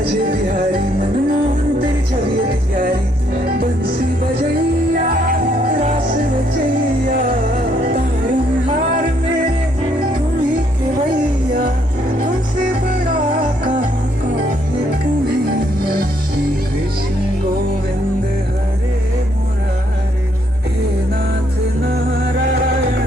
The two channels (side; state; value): both; normal; correlation 0.71